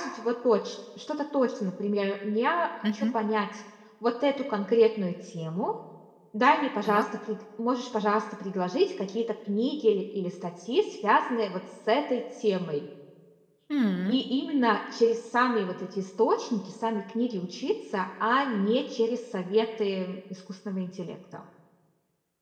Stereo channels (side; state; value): both; identical; correlation 1.00